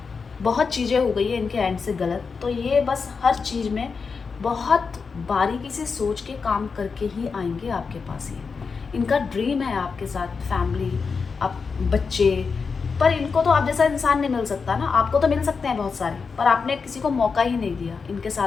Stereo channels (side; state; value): right; quieter; 5.2 dB